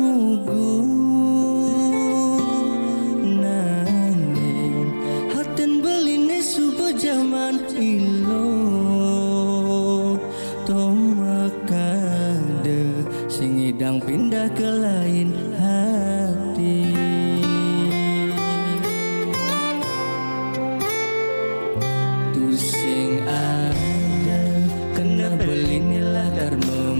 nanging haten beline subuh zaman ilo tomakade sing idang pindah ke lain hati. Sing ada kena beline latar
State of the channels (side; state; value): both; inverted; correlation -1.00